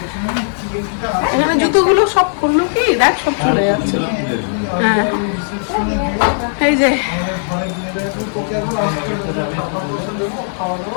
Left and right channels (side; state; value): right; silent; digital silence